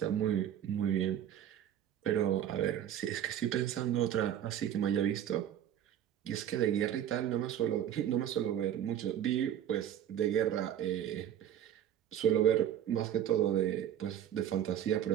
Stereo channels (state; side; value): quieter; left; 10.5 dB